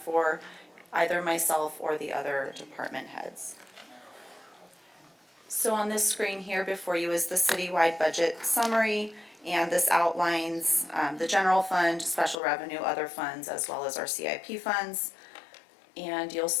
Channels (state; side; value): drops out; right; at 12.4 s